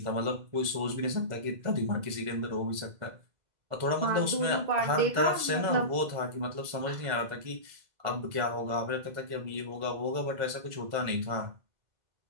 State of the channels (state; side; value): late; left; 2.0 ms